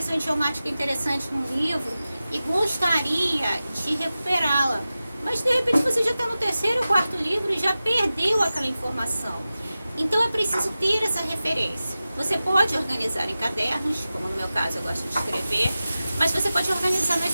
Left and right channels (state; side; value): inverted; both; correlation -0.95